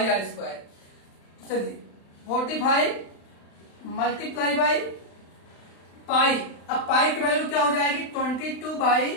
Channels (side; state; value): right; late; 35 ms